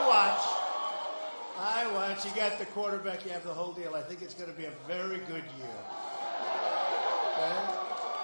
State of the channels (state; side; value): inverted; both; correlation -1.00